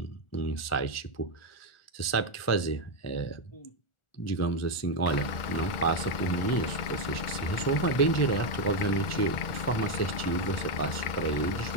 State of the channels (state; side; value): late; right; 1.4 ms